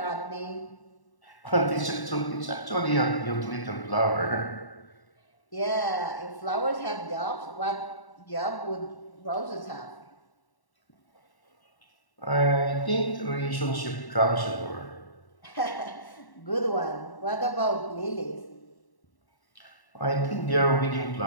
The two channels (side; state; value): right; late; 1.1 ms